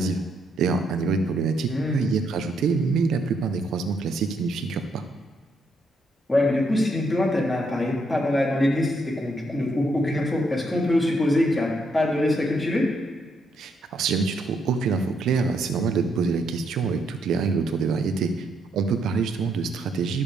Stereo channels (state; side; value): normal; both; correlation 0.75